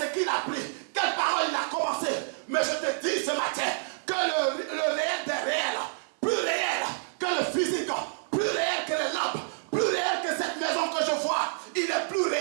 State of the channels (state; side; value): silent; left; digital silence